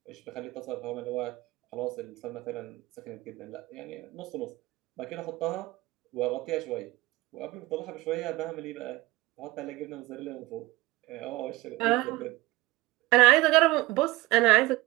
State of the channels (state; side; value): quieter; left; 19.3 dB